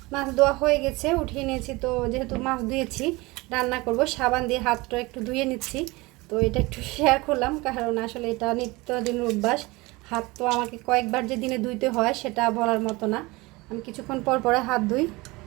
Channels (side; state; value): left; quieter; 22.8 dB